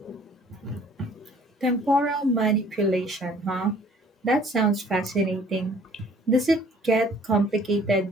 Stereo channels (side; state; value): both; normal; correlation 0.55